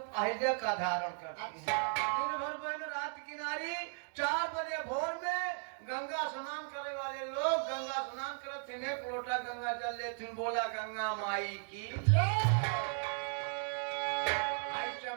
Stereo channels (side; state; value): left; silent; 54 dB below the other